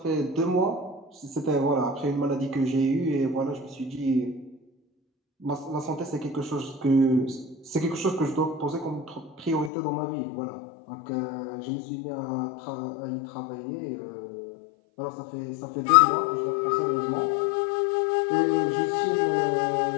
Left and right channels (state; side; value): drops out; right; at 9.7 s